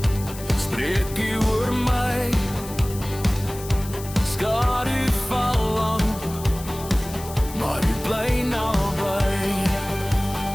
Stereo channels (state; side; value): noise; left; hiss, 14 dB below the sound